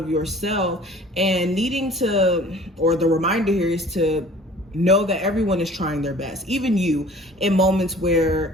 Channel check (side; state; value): both; normal; correlation 0.48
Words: yourself, and needing to, or the reminder here is to know that everyone is trying their best, even you, in moments